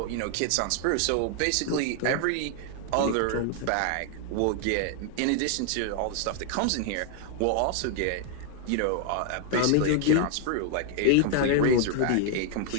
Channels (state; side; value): different; both; correlation 0.00